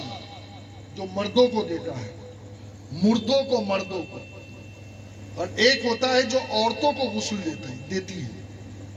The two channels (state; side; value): identical; both; correlation 1.00